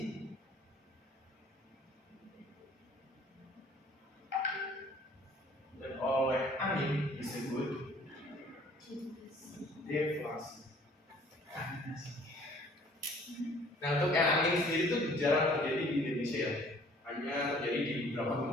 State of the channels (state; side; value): normal; both; correlation 0.55